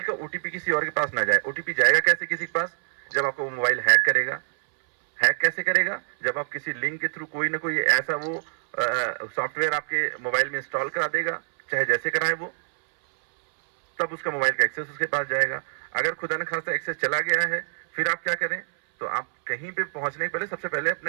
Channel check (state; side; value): silent; left; 61 dB below the other